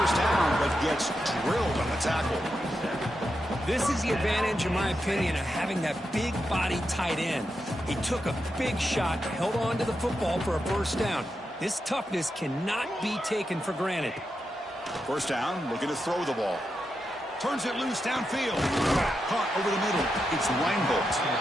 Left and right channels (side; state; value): both; normal; correlation 0.87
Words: down, but gets drilled on the tackle. This is the advantage, in my opinion, of having that big body tight end. He took a big shot, held on to the football for a first down. This toughness cannot be taken for granted. First down, looking to throw the ball. Turns it loose downfield. Caught over the middle. It's Reinbolt.